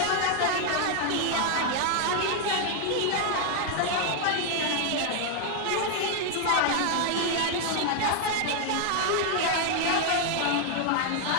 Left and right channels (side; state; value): both; different; correlation 0.00